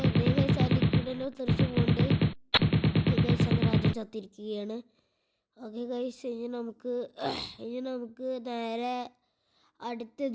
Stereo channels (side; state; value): both; identical; correlation 1.00